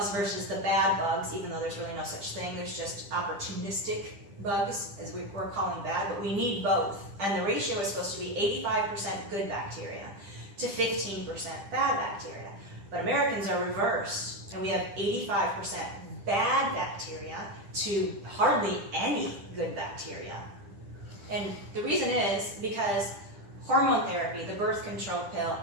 versus the bad bugs, even though there's really no such thing. There's just opportunistic bugs, as we're calling bad, but we need both. And the ratio is supposed to be 85% good bacteria to 15% bad bacteria. But Americans are reversed, and we have 85% bad bacteria to hardly any good bacteria. And the reason is because hormone therapy, the birth control pill,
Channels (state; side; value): late; left; 10 ms